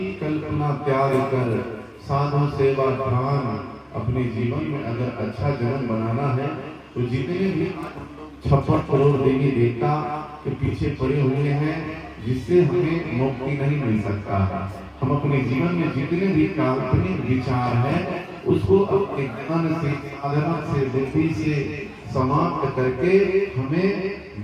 कल्पना त्याग कर साधु सेवा ध्यान, अपने जीवन में अगर अच्छा जीवन बनाना है तो जितने भी 56 करोड़ देवी देवता के पीछे पड़े हुए हैं, जिससे हमें मुक्ति नहीं मिल सकता। हम अपने जीवन में जितने भी काल्पनिक विचार है उसको अपने ज्ञान से, साधना से, बुद्धि से समाप्त करके हमें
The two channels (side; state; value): both; identical; correlation 1.00